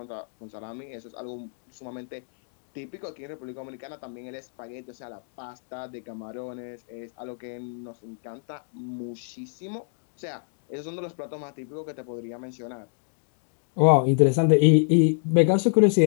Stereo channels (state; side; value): silent; right; digital silence